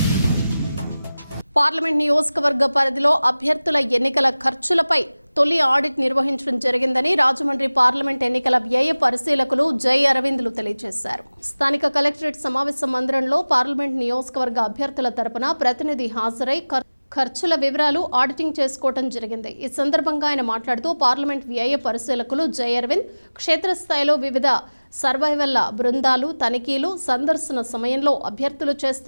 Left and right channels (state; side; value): inverted; both; correlation -0.99